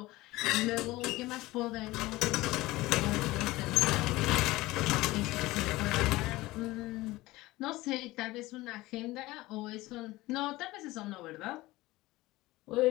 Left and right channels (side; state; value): right; quieter; 19.1 dB